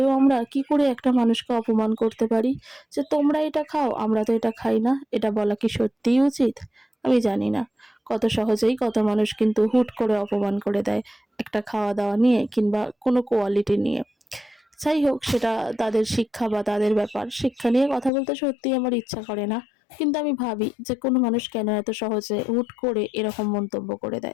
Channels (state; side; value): drops out; right; at 18.1 s